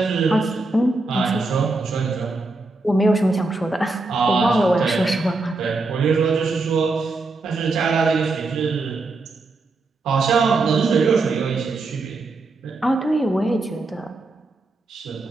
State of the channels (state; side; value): quieter; left; 3.4 dB